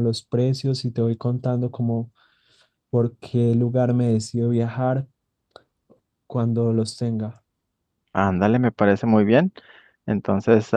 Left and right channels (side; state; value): both; identical; correlation 1.00